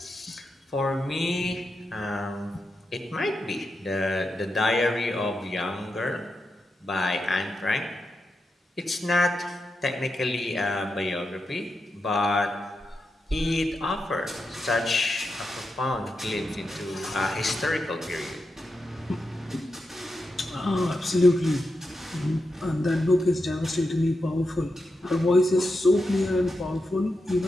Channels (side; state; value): both; normal; correlation 0.87